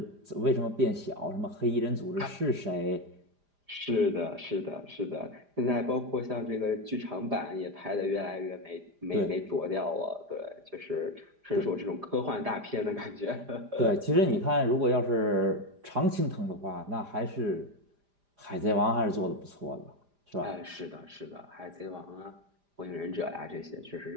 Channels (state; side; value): late; left; 4.9 ms